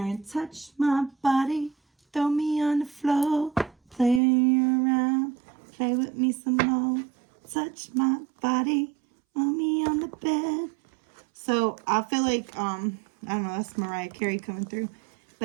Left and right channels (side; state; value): left; drops out; at 4.2 s